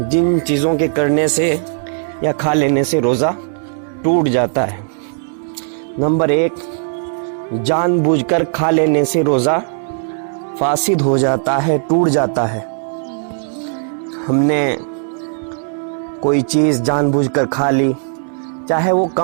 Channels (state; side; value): silent; left; digital silence